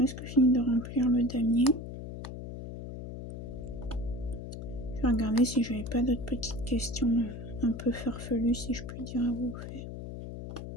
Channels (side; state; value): left; noise; hum, 9 dB below the sound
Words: fini de remplir le damier. Je vais regarder si j'avais pas d'autres petites questions un peu farfelues, si je puis dire, à vous faire.